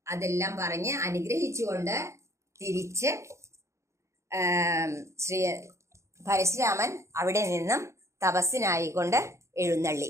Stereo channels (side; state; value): left; late; 0.14 ms